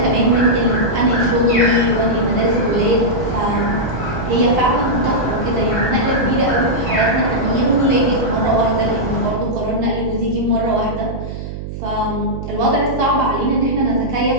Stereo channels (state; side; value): noise; right; hum, 8 dB below the sound